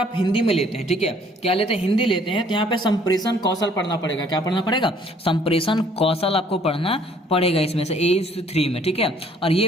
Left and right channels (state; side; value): normal; both; correlation 0.60